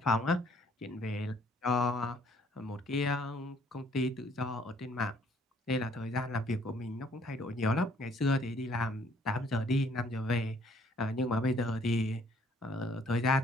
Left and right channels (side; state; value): both; normal; correlation 0.63